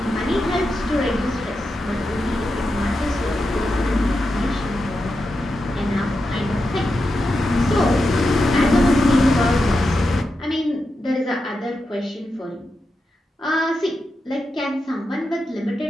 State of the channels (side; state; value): both; normal; correlation 0.88